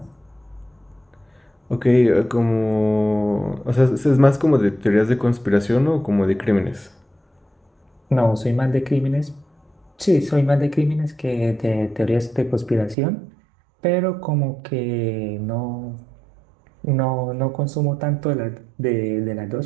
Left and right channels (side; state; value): left; drops out; at 13.0 s